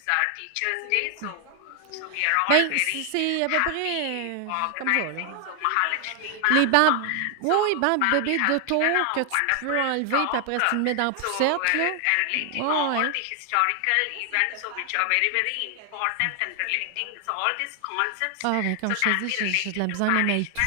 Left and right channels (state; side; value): different; both; correlation 0.00